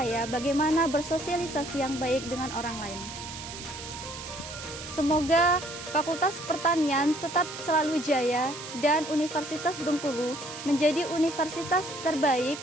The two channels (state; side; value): noise; right; hiss, 11 dB below the sound